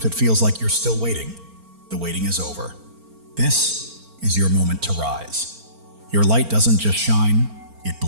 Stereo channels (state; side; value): late; left; 4.4 ms